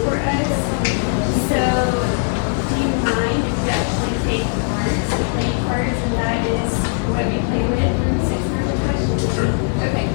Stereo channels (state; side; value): silent; right; 63 dB below the other